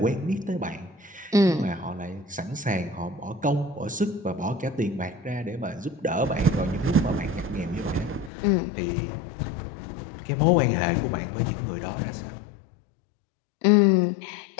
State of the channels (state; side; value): drops out; right; at 8.3 s